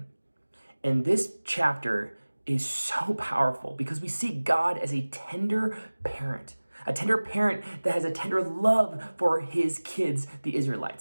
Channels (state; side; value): inverted; both; correlation -1.00